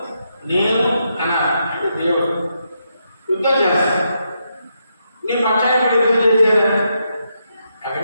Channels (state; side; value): inverted; both; correlation -0.81